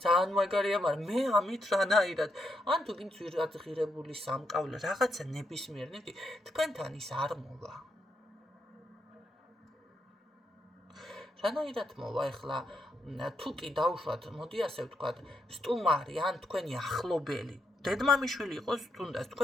ძალიან მაგარია, მაგრამ მე ამით რანაირად ან თუ გინდ ძვირადღირებული სამკაულე რაღაცა ნებისმიერ ნივთი თქვენთან ის არ მოვა. რანაირად მოვა ახლა თუ კი დავუშვათ, მოდი ასე ვთქვათ, სტუმარი ან თქვენი ახლობელი, დედმამიშვილი იყოს თუნდაც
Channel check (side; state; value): both; normal; correlation 0.80